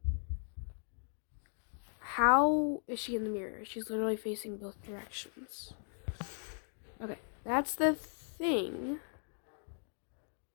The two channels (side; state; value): right; silent; digital silence